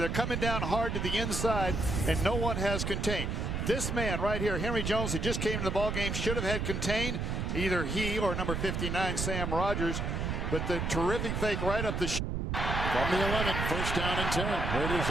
coming down hard to the inside, and no one has contained. This man right here, Henry Jones, that just came to the ball game, should have had contained. Either he or number 59, Sam Rogers. But the terrific fake right up the From the 11, first down and 10. Raiders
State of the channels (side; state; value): right; noise; rumble, 1 dB below the sound